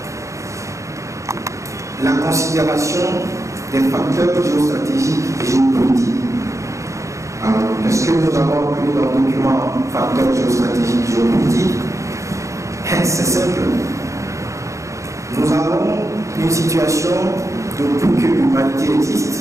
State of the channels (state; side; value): late; left; 0.15 ms